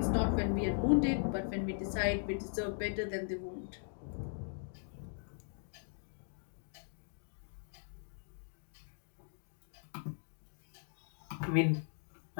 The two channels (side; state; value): right; silent; digital silence